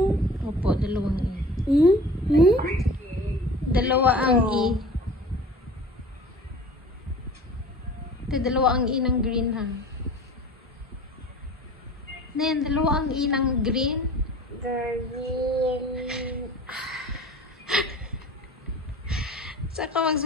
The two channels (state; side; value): normal; both; correlation 0.42